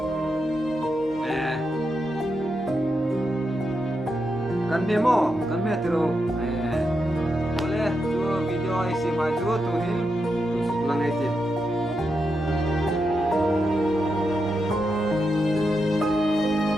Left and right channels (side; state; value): both; normal; correlation 0.85